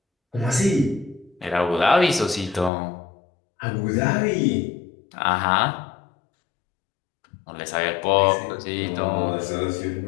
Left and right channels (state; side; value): drops out; right; at 2.7 s